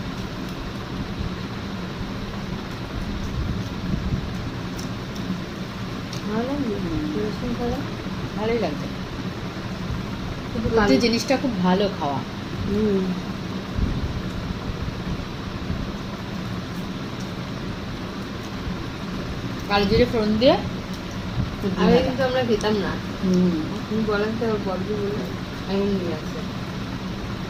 ভালোই লাগছে, কুঁদরি জিনিসটা খুব ভালো খাওয়া। কালো জিরে ফোড়ন দিয়ে আগে কিন্তু আমরা খেতাম না। তুমি বলেন তো বড় বলে এমন নিয়ে আসে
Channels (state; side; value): identical; both; correlation 1.00